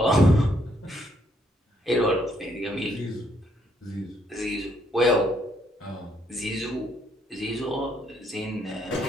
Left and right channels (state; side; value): normal; both; correlation 0.71